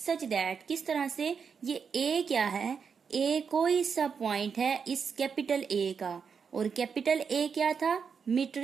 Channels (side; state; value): left; quieter; 6.2 dB